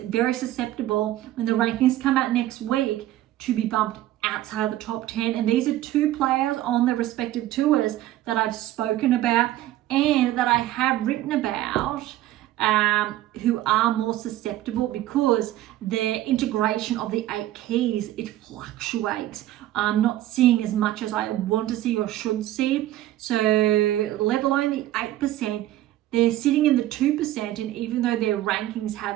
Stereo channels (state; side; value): quieter; left; 14.4 dB